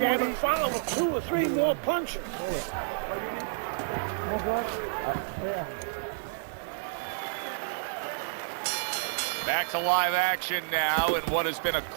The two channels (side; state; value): left; silent; digital silence